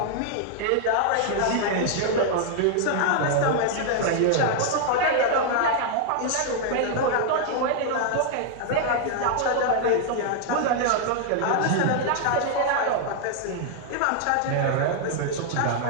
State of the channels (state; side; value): different; both; correlation 0.00